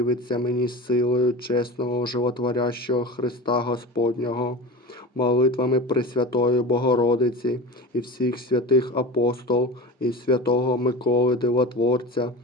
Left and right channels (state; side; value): normal; both; correlation 0.31